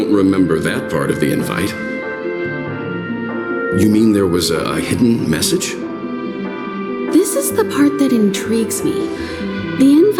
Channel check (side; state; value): both; identical; correlation 1.00